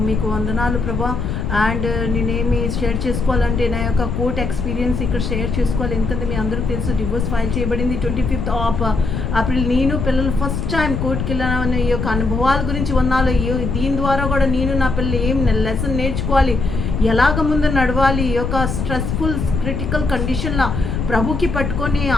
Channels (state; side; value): noise; left; rumble, 2 dB below the sound